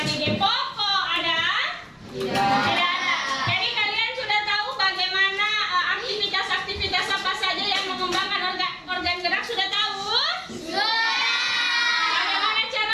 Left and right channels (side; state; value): both; identical; correlation 1.00